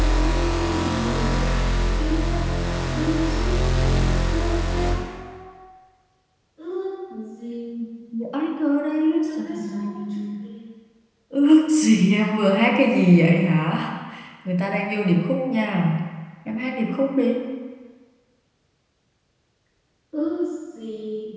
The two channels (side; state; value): both; identical; correlation 1.00